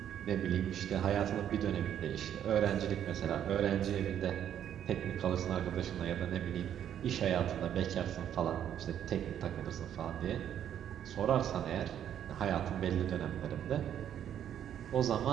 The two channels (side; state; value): left; quieter; 10.0 dB